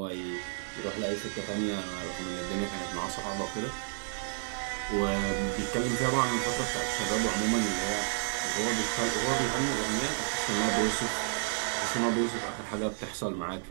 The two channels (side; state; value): left; silent; digital silence